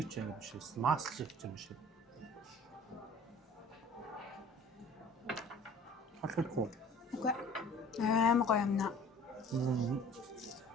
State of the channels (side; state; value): both; normal; correlation 0.48